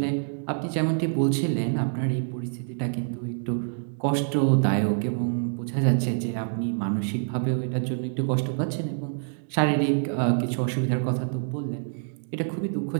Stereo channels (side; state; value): left; silent; digital silence